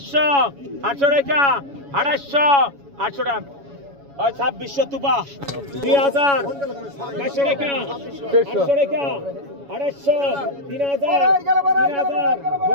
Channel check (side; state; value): left; late; 7.1 ms